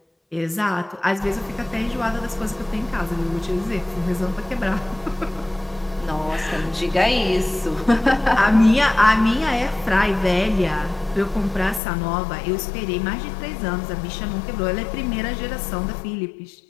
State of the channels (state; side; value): drops out; right; at 11.8 s